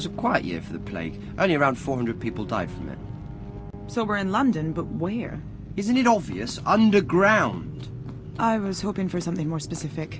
a quiet year for the plague. Only around 400 people died from it. So we're in London, but where? Isn't it obvious? Underground. I was hoping for something more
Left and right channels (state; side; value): identical; both; correlation 1.00